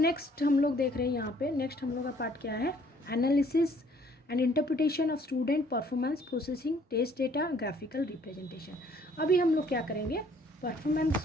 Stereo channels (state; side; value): normal; both; correlation 0.60